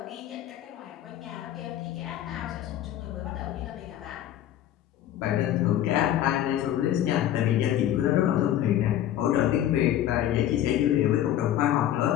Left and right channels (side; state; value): right; quieter; 11.9 dB